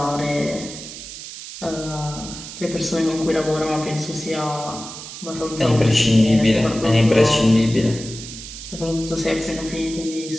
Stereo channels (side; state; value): right; noise; hiss, 12 dB below the sound